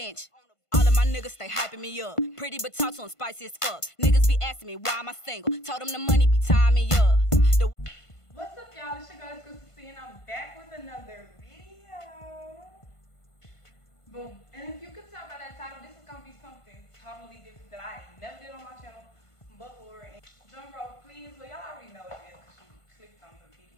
All of my niggas stay hyping me up. Pretty but talk to them spicy as fuck. Niggas be asking me why am I single. Told them the money be tying me up. What's up, y'all? It's your girl, it's good to see, and I'm back with another video. Boom. And if you could tell by that title, this is gonna be something totally different that I ain't never did on my channel before. And drum roll, please. Well, y'all already know what it is because you clicked on the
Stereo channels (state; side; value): late; right; 1.5 ms